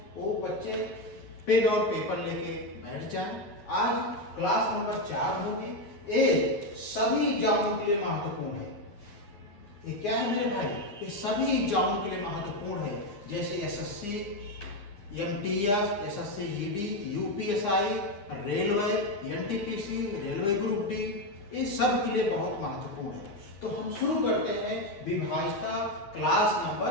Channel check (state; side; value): late; right; 9.7 ms